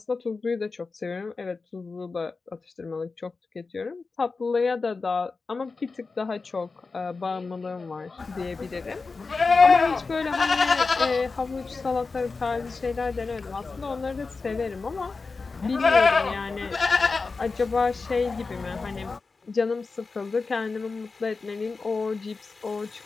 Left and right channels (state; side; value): quieter; right; 4.2 dB